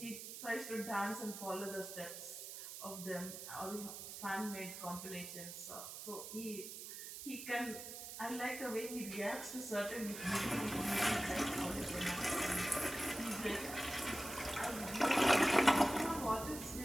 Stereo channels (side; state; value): right; noise; hiss, 9 dB below the sound